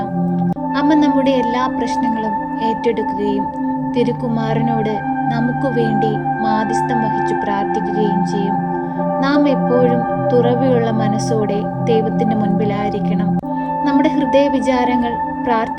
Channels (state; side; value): identical; both; correlation 1.00